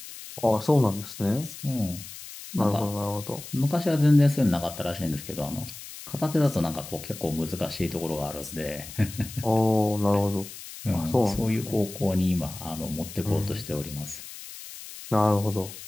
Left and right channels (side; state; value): left; noise; hiss, 13 dB below the sound